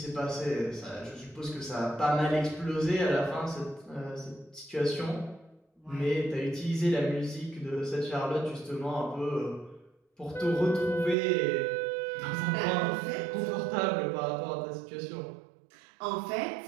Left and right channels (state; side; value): drops out; left; at 11.2 s